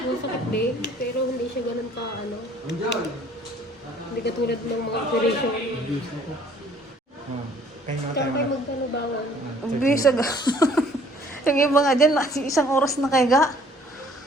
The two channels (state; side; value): normal; both; correlation 0.57